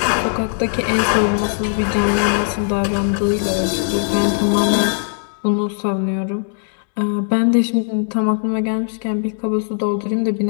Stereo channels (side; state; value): right; silent; digital silence